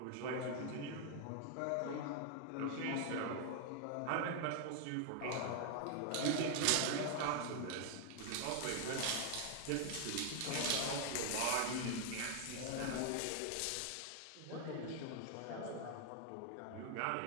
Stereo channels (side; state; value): both; different; correlation 0.00